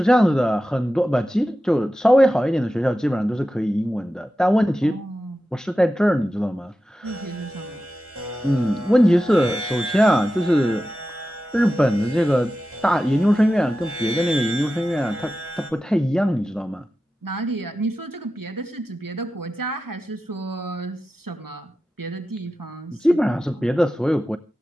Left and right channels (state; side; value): normal; both; correlation 0.93